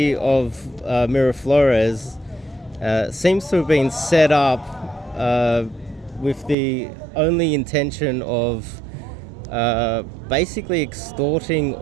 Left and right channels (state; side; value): drops out; left; at 6.6 s